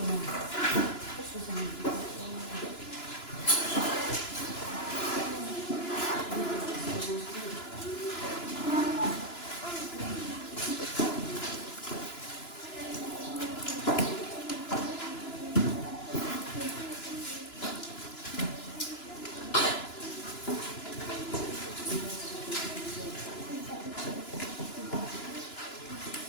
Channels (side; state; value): right; late; 2.9 ms